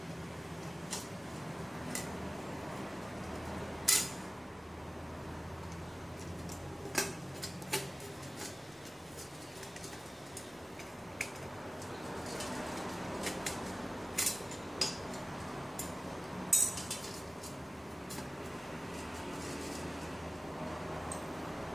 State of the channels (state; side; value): normal; both; correlation 0.97